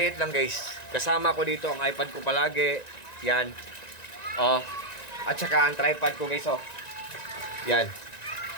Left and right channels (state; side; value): late; right; 1.9 ms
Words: lang guys. Kasama ko dito ang iPad ko palagi. Yan. Oh. At saka ang tripod ko guys oh. Yan.